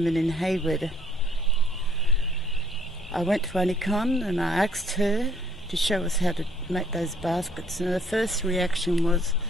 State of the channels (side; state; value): both; normal; correlation 0.63